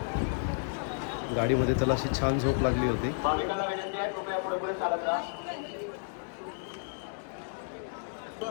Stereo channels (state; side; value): silent; right; digital silence